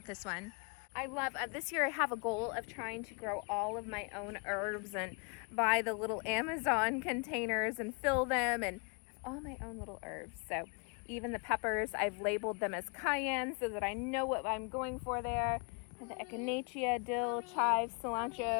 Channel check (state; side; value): quieter; right; 35.1 dB